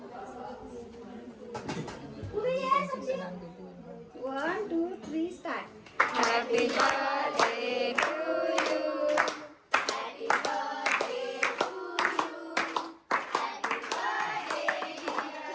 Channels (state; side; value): identical; both; correlation 1.00